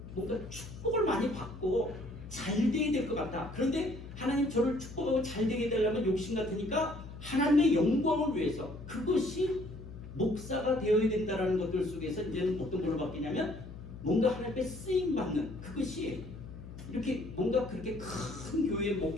뭔가 축복을 많이 받고 잘 되게 될 것 같다. 그런데 하나님 저를 축복하고 잘 되게 되려면 욕심 같으니까 하나님의 영광을 위해서, 그것이 목사가 되어야 된다는 것들 속에서 이제는 어떤 걸로 바뀌냐면 뭔가 하나님께 쓰임 받는, 그것이 이렇게 뭔가 그렇게 큰 교회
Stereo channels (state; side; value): noise; left; hum, 13 dB below the sound